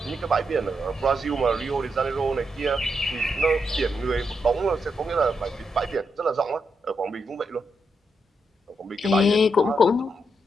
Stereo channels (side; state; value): both; normal; correlation 0.82